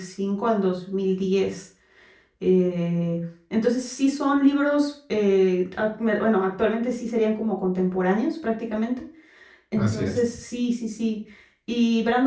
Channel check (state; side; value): identical; both; correlation 1.00